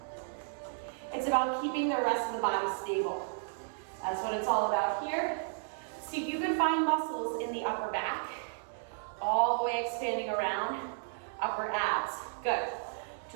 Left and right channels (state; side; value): silent; left; digital silence